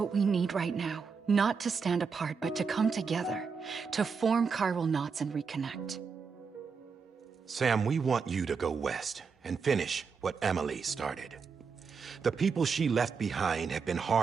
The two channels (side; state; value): left; quieter; 5.5 dB